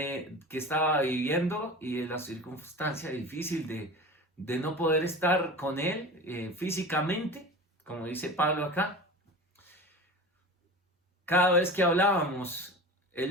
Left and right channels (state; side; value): normal; both; correlation 0.34